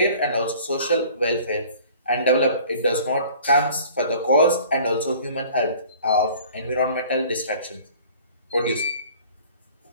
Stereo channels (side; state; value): both; inverted; correlation -0.49